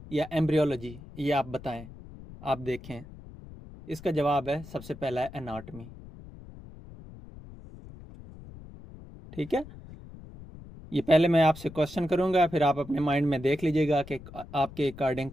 या एम्ब्रियोलॉजी? ये आप बताएं, आप देखें। इसका जवाब है सबसे पहला है एनाटमी। ठीक है, ये पहले मैं आपसे क्वेश्चन करूंगा, फिर आप अपने माइंड में देख लीजिएगा कि आपके अकॉर्डिंग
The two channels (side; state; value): left; noise; rumble, 17 dB below the sound